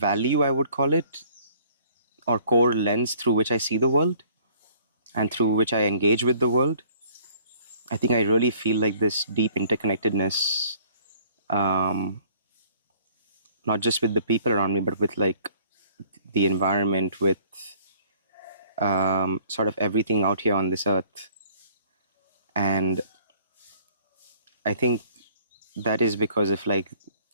I would call it, or core lens through which I see the world and through which I engage with the world. I think I really feel like this deep interconnectedness, um, not just with the people around me, but with like the environment, with sort of everything out here on this earth. And I think that is because of like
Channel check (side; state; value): both; inverted; correlation -0.57